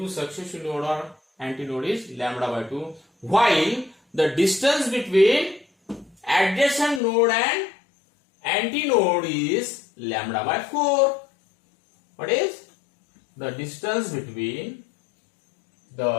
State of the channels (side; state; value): right; drops out; at 7.0 s